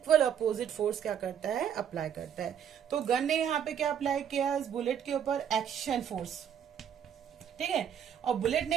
अपोजिट फोर्स क्या करता है, अप्लाई करता है। तो गन ने यहाँ पे क्या अप्लाई किया, इस बुलेट के ऊपर एक्शन फोर्स, ठीक है, और बुलेट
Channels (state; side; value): quieter; left; 8.7 dB